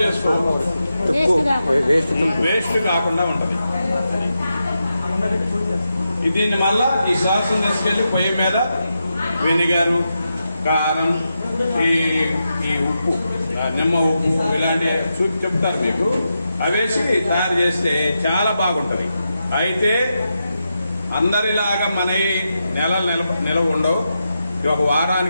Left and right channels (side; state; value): both; inverted; correlation -0.87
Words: చేసుకోవచ్చు, వేస్ట్ కాకుండా ఉంటది. దీన్ని మళ్ళా ఈ సాస్ తీసుకెళ్ళి పొయ్యి మీద వెనిగరు, కారం, ఈ ఉప్పు, నిమ్మ ఉప్పు ఇలాంటి చెప్తారు మీకు, అవేసి తయారు చేస్తే చాలా బాగుంటది. అయితే అందరిలాగా మన నిలవ ఉండవు, ఒక